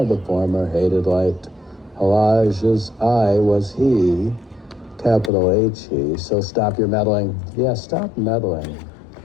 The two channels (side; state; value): right; drops out; at 5.3 s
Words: the former hated light. Elijah's I was he, capital H-E, so stop your meddling. Yeah, stop meddling.